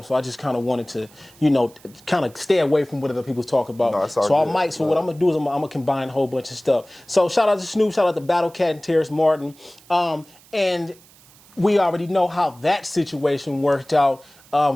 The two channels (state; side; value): noise; right; hiss, 26 dB below the sound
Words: so I just kind of wanted to, you know, kind of stay away from what other people talk about. No, it's all so good. what I'm gonna do is I'm gonna combine a whole bunch of stuff. So shout out to Snoop, shout out to Battle Cat and Terrace Martin, and we already know how that situation worked out.